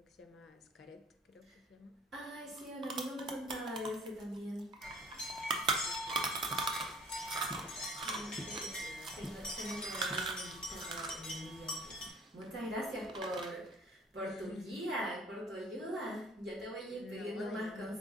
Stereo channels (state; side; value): normal; both; correlation 0.51